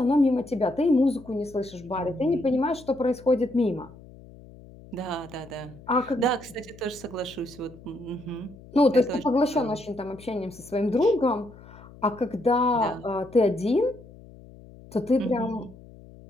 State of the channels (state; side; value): noise; left; hum, 20 dB below the sound